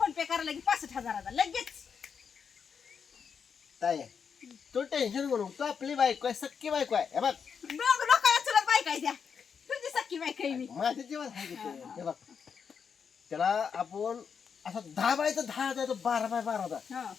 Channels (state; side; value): quieter; right; 6.6 dB